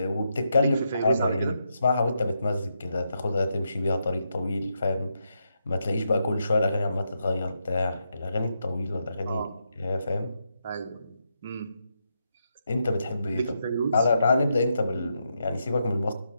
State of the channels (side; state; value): both; inverted; correlation -0.82